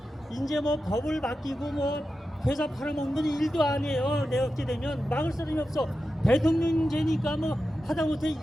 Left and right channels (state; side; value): normal; both; correlation 0.91